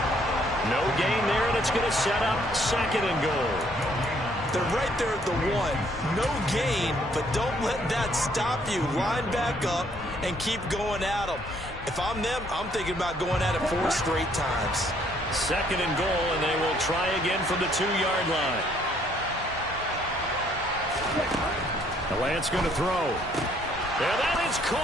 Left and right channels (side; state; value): both; normal; correlation 0.65